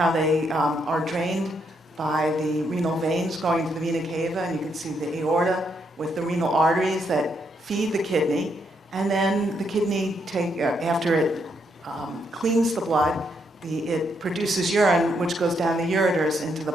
they are drained by the renal veins going to the vena cava, and you can see the aorta with the renal arteries that feed the kidney. And then the kidney, after it cleans the blood, it produces urine, which goes down the ureters into the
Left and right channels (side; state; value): both; normal; correlation 0.76